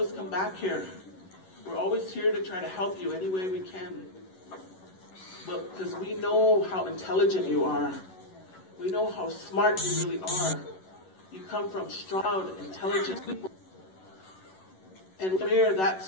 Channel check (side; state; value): right; late; 11 ms